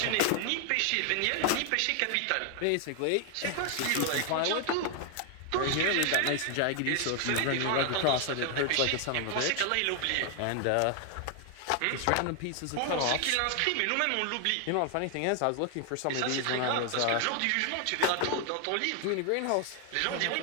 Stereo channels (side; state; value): both; different; correlation 0.00